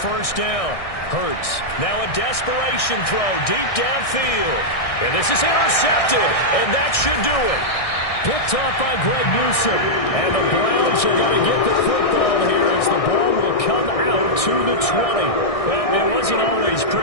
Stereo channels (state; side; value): late; right; 1.6 ms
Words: first down, Hurts. Now a desperation throw deep downfield. And this is intercepted, and that should do it. Picked off by Greg Newsome. And the Browns are going to get the football here as the ball will come out to the 20. Well, it wasn't always